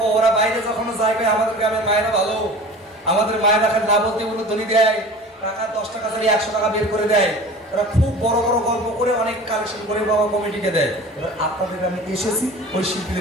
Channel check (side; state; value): both; normal; correlation 0.39